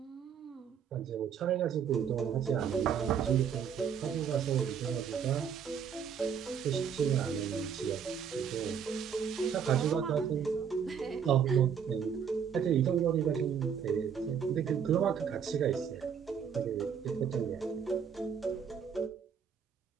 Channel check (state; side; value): quieter; left; 7.5 dB